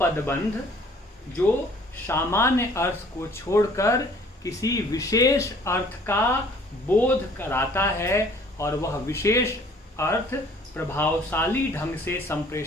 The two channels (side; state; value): both; normal; correlation 0.55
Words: जो सामान्य अर्थ को छोड़कर किसी विशेष अर्थ का बोध कराता है और वह विशेष अर्थ प्रभावशाली ढंग से